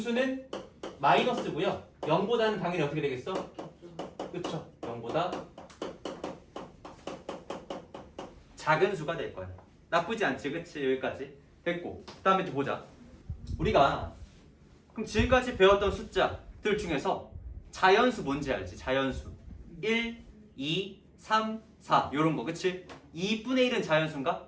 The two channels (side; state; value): both; identical; correlation 1.00